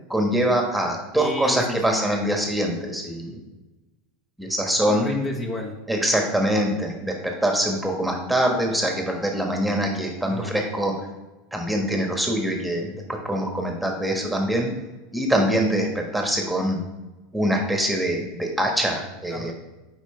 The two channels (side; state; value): both; normal; correlation 0.62